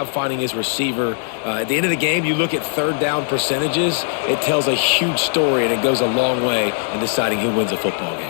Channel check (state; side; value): silent; right; 59 dB below the other